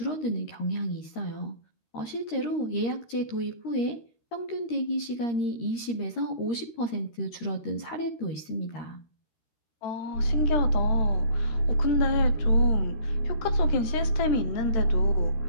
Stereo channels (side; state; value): right; late; 13 ms